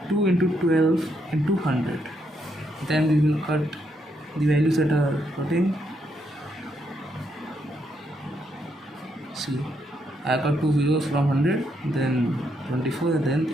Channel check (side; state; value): both; normal; correlation 0.77